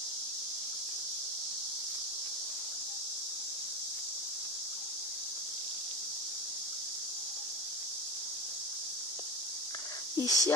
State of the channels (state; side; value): normal; both; correlation 0.22